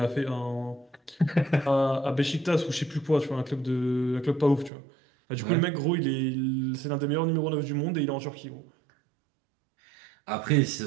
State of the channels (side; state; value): left; drops out; at 4.7 s